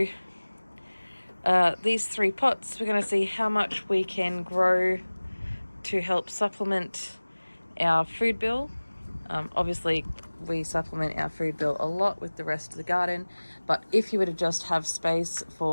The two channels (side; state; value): both; inverted; correlation -1.00